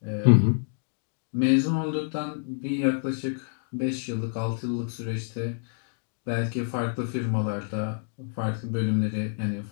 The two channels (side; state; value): right; silent; digital silence